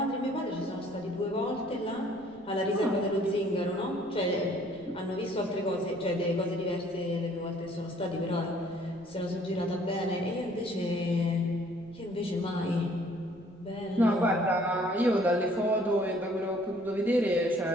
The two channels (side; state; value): right; noise; rumble, 27 dB below the sound